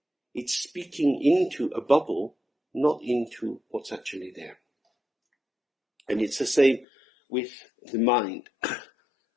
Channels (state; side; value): drops out; right; at 6.9 s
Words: It's speaking into a bubble, not into what's actually there. And it's the same with the mind.